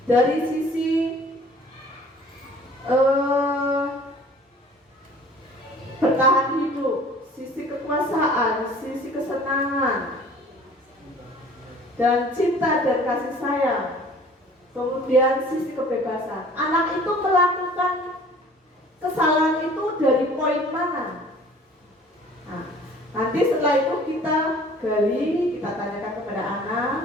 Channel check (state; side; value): normal; both; correlation 0.50